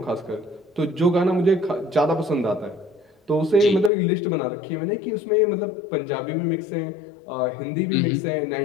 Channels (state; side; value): drops out; right; at 3.9 s